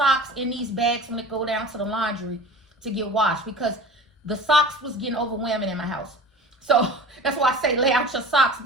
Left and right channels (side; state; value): both; normal; correlation 0.39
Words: in these bags when they go down to the laundry to get washed, because the socks was getting overwhelming in my house. So that's why I say lay out your socks,